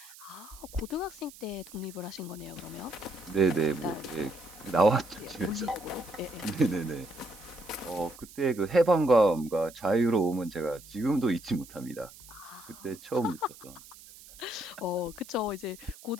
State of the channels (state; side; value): noise; right; hiss, 19 dB below the sound